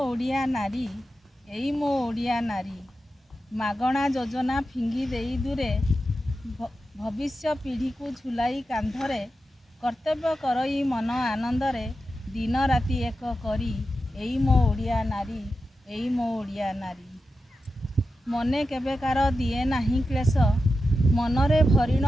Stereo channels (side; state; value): both; normal; correlation 0.91